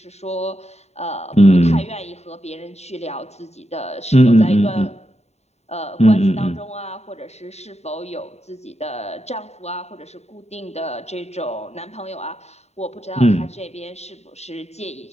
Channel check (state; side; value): late; right; 0.32 ms